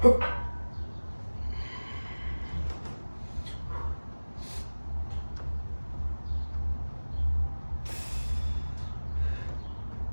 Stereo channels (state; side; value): inverted; both; correlation -1.00